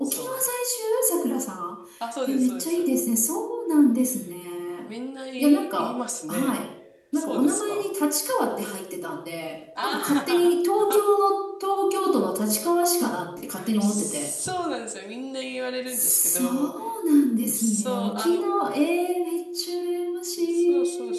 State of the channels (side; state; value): both; identical; correlation 1.00